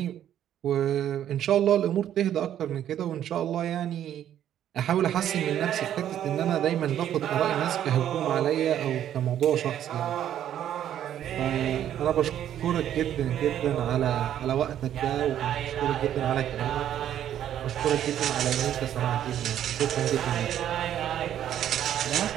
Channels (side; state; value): left; quieter; 10.7 dB